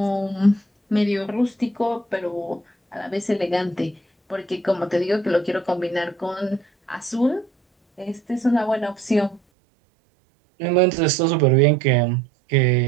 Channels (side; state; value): left; drops out; at 9.4 s